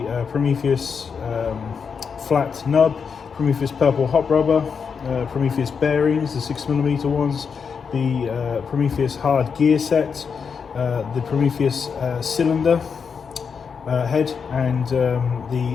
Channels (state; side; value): quieter; right; 6.1 dB